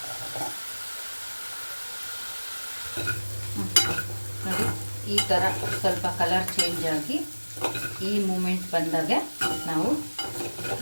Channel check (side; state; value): both; inverted; correlation -1.00